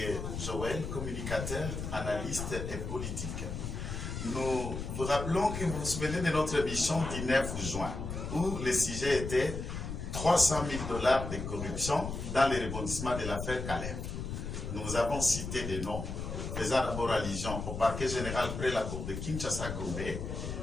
Joël, communicateur, analyste et politique. Nous vous rappelons que vous vous souvenez de notre émission du 9 juin où le sujet était 300 000 $ de corruption dans les rebondissements de l'affaire Caleb. Nous vous avons cité des noms faisant d'abord allusion au parquet général près la cour de Kinshasa-Gombe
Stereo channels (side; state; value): left; noise; rumble, 5 dB below the sound